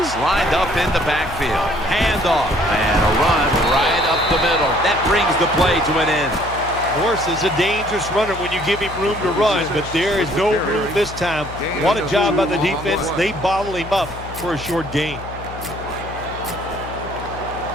lined up in the backfield. Handoff and a run right up the middle. That brings the play to an end. Morris is a dangerous runner when you give him room to run, but there is no room this time. What a job by the defense. They bottle him up for a short gain.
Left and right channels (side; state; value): left; noise; hum, 12 dB below the sound